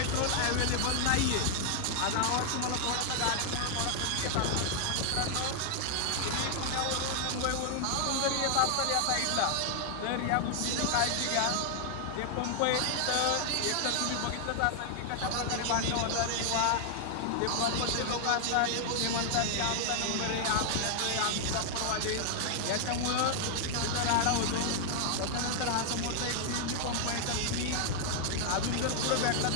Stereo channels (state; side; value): different; both; correlation 0.00